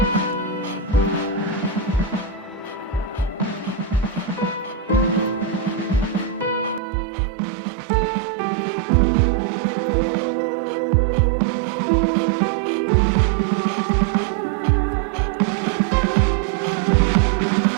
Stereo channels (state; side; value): drops out; left; at 6.8 s